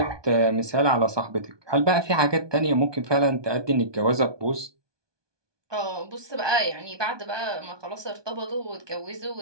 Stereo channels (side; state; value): left; late; 1.2 ms